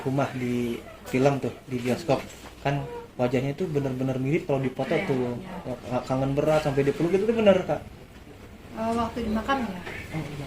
di film tuh di bioskop, kan wajahnya itu benar-benar mirip kalau dipoto Iya, tuh. iya. Kangen berat sampai dipeluk itu tuh bener Kak? Waktu di makam ya, Oh,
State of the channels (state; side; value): identical; both; correlation 1.00